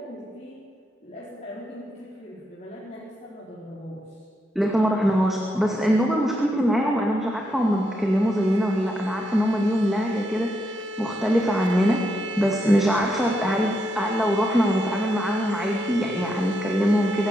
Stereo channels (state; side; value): normal; both; correlation 0.80